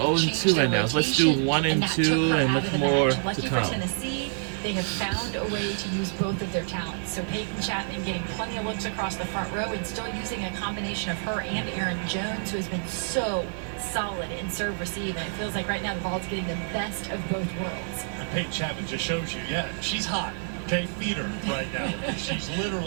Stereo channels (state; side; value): silent; left; 60 dB below the other